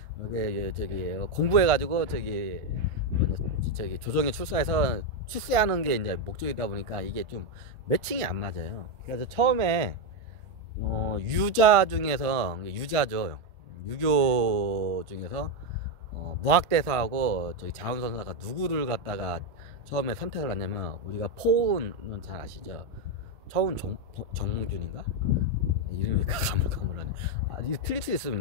저기 공부해가지고 저기 조정에 출사해서 출세하는 게 이제 목적이다 보니까 이게 좀 매칭이 안 맞아요. 그래서 처음에 유자 중에서 유자죠. 유교 중에서 무학대사하고 저기 자운선사가 누구를 갖다가 처음에 선택을 하냐면 우리가 포운은 잘 아시죠? 처운 정몽준인가? 이름이 가물가물하네. 이게 틀릴 수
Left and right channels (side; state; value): left; late; 1.4 ms